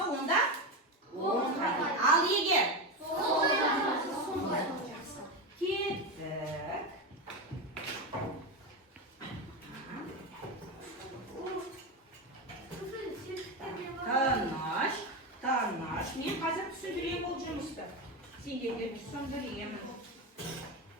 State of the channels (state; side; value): normal; both; correlation 0.16